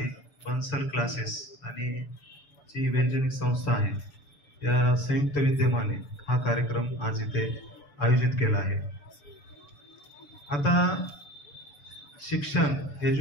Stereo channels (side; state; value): right; late; 6.9 ms